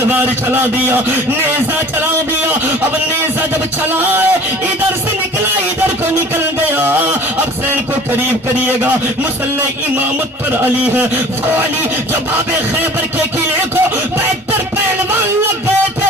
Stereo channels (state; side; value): normal; both; correlation 0.45